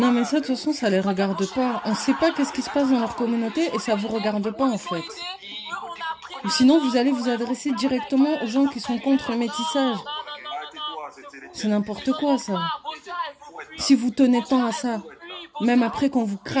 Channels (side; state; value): both; identical; correlation 1.00